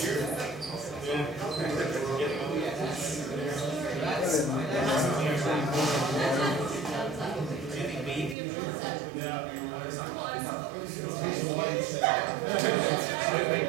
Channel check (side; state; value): left; drops out; at 8.3 s